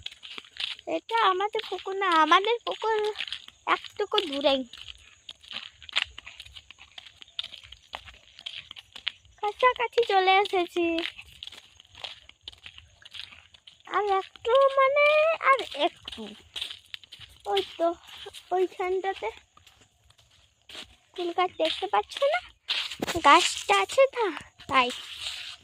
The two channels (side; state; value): both; identical; correlation 1.00